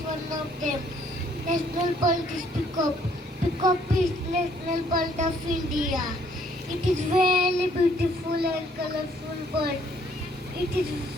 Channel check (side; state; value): both; normal; correlation 0.64